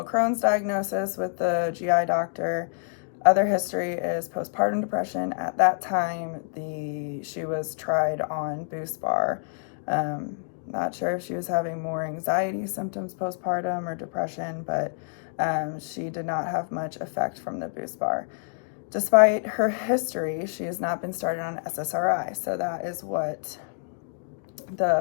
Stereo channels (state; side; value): silent; right; 60 dB below the other